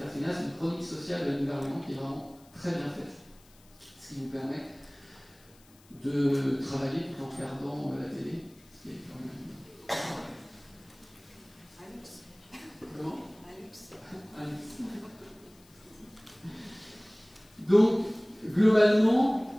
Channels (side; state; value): left; noise; hiss, 28 dB below the sound